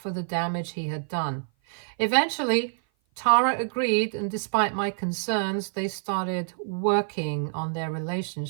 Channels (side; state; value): left; silent; 56 dB below the other